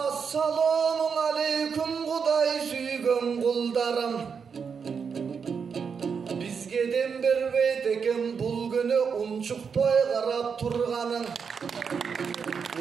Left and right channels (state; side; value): quieter; left; 6.2 dB